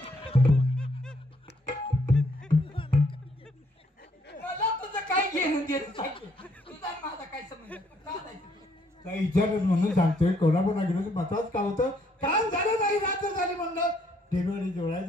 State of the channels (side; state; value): both; normal; correlation 0.69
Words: मला तुझं काय घेणं देणं सांग, तुझा माझा काय संबंध? का जायचं? काही विचारलं म्हणून सांगतोय. कोल्हापूरला गेलो होतो. महत्वाचं काम होतं. काम झालं नाही, रात्र झाली म्हणलं डिलिव्हरी जोडायला